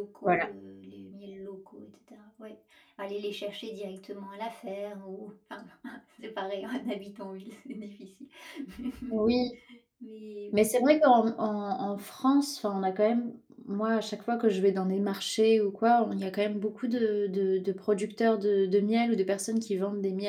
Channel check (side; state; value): both; identical; correlation 1.00